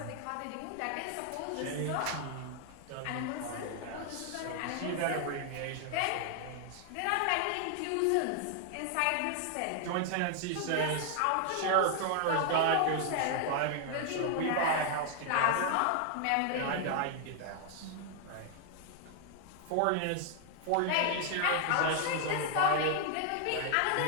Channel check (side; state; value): both; different; correlation 0.00